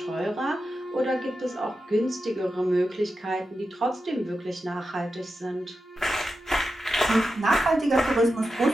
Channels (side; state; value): both; normal; correlation 0.90